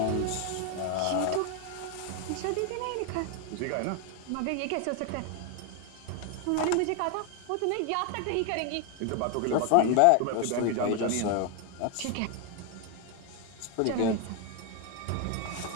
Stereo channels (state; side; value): different; both; correlation 0.01